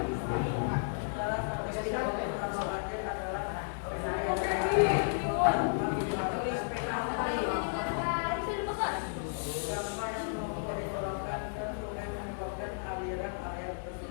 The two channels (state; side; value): silent; right; digital silence